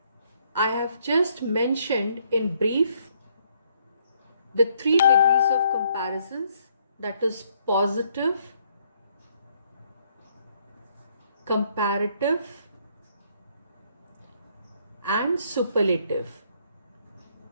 I have just mentioned in brief the three degrees of comparisons, that is positive, comparative, and superlative.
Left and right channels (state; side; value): inverted; both; correlation -0.68